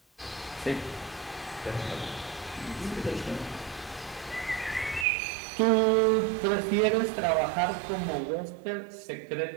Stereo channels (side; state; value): left; drops out; at 5.1 s